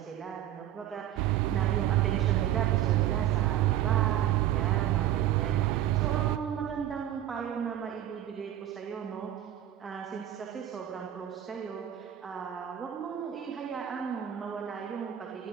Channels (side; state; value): left; quieter; 11.9 dB